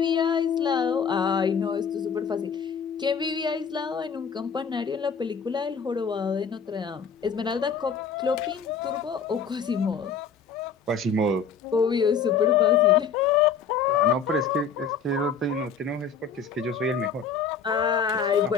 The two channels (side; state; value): right; quieter; 6.2 dB